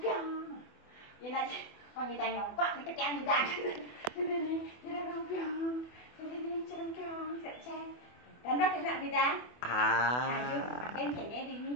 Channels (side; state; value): right; late; 24 ms